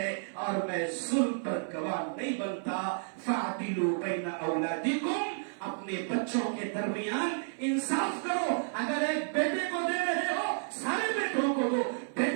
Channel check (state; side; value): silent; left; 57 dB below the other